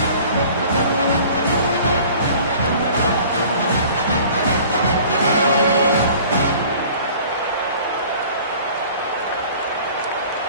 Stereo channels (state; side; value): inverted; both; correlation -0.47